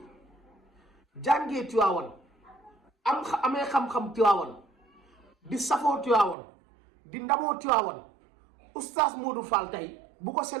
jàngee Tiwaawan amee xam-xam Tiwaawan di safoo Tiwaawan di ndamoo Tiwaawan oustaz Modou Fall tey bu ko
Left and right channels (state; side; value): drops out; left; at 6.4 s